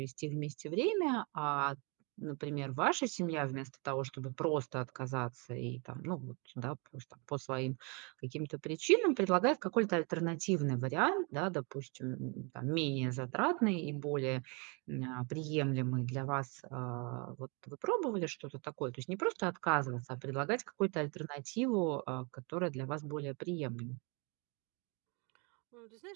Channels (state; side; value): quieter; left; 32.4 dB